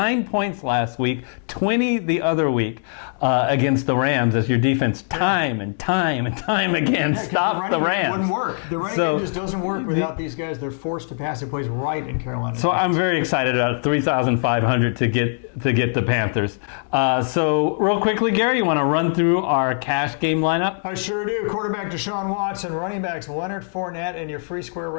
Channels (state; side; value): silent; right; 64 dB below the other